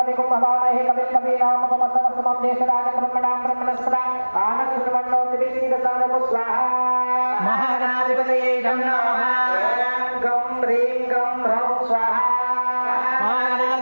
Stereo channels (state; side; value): inverted; both; correlation -1.00